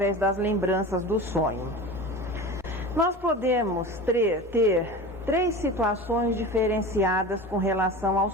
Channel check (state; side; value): normal; both; correlation 0.32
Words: das lembranças do sonho. Nós podemos ter três situações diferenciadas com relação ao